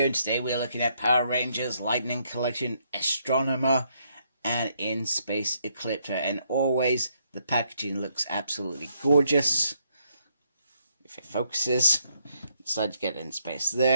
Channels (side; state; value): both; inverted; correlation -0.73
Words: Today we're looking at Power Rangers Lightning Collection, Astromena, and In Space Ecliptor. And always the packaging looks absolutely gorgeous. If it focuses, inside you get In Space